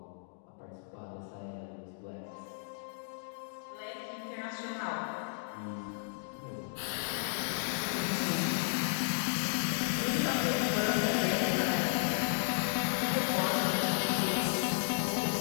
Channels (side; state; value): right; silent; digital silence